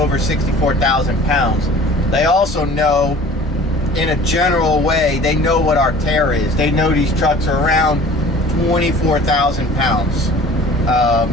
64,000 pounds. They also know, in a general way, they know what our tear is. They know these trucks are around 24,000 pounds,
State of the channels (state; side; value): normal; both; correlation 0.46